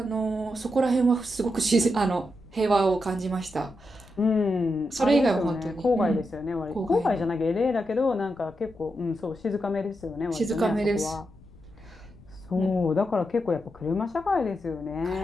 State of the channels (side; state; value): left; noise; rumble, 24 dB below the sound